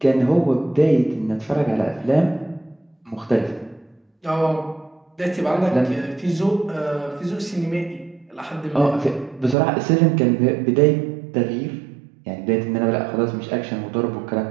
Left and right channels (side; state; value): left; drops out; at 9.6 s